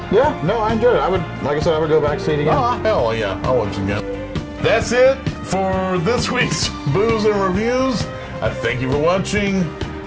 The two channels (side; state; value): both; identical; correlation 1.00